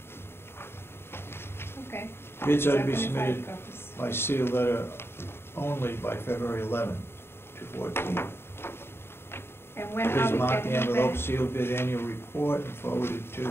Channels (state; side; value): late; right; 0.11 ms